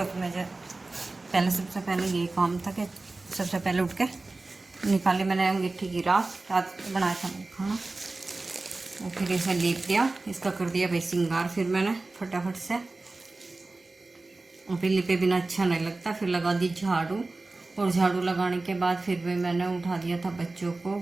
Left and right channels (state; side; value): quieter; left; 3.3 dB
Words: मुझे पहले सबसे पहले यही काम था कि सबसे पहले उठ के निकाली मैंने अंगीठी की राख। रात बनाया था मैं खाना, और फिर इसे लीप दिया, इसका कर दिया भाई श्रृंगार। फिर मैंने फटाफट से, और फिर लिपे बिना अच्छा नहीं लगता, फिर लगा दी झाड़ू। और झाड़ू लगाने के बाद फिर भी मैंने उठा दिया था बच्चों को।